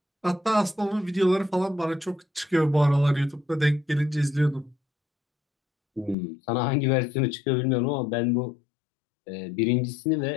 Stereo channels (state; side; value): drops out; right; at 6.2 s